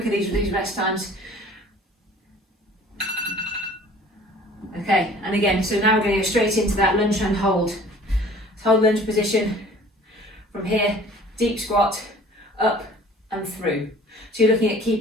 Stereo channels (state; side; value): normal; both; correlation 0.49